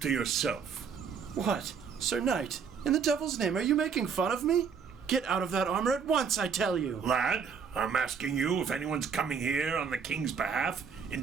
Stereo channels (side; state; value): left; quieter; 6.3 dB